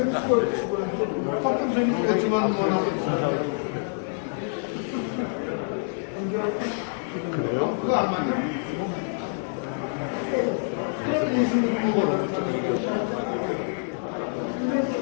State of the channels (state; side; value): silent; right; 61 dB below the other